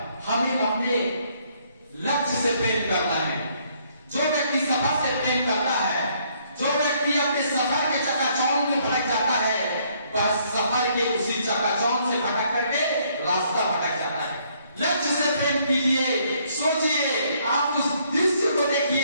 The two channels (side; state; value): both; inverted; correlation -0.67